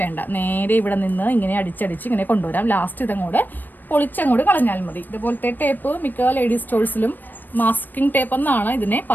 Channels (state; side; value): late; right; 0.090 ms